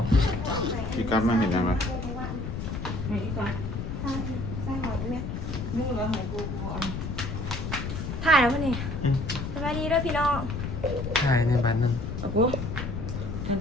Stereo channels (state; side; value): noise; left; rumble, 5 dB below the sound